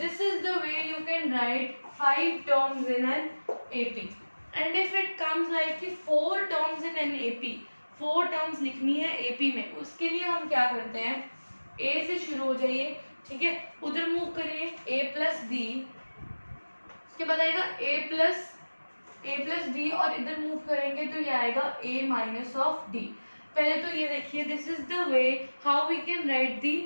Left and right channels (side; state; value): both; inverted; correlation -1.00